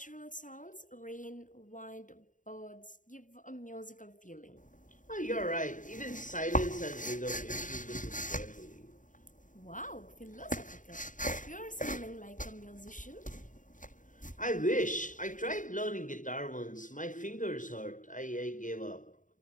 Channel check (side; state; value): right; late; 0.38 ms